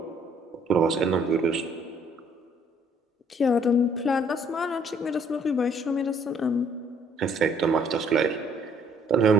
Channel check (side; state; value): both; normal; correlation 0.63